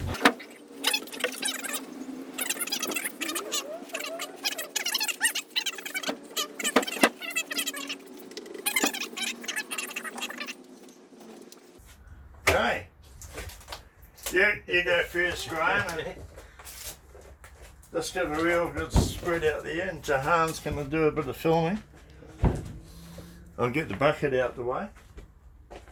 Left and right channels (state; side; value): identical; both; correlation 1.00